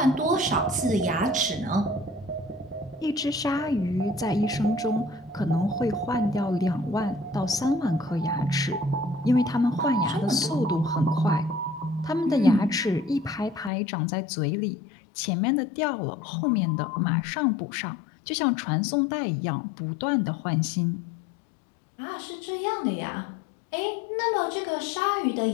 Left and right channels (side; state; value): right; drops out; at 13.7 s